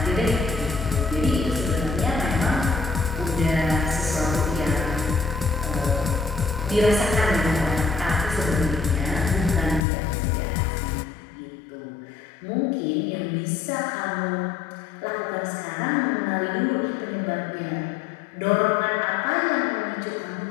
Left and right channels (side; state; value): right; drops out; at 9.9 s